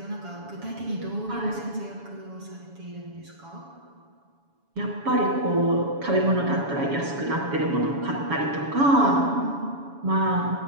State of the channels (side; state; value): left; late; 7.1 ms